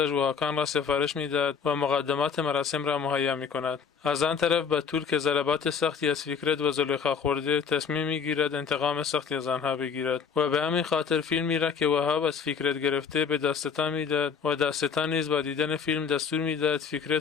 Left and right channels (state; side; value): quieter; right; 6.5 dB